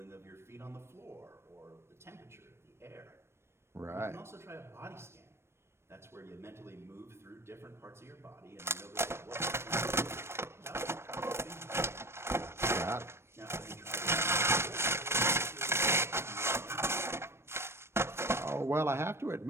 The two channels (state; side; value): late; left; 0.12 ms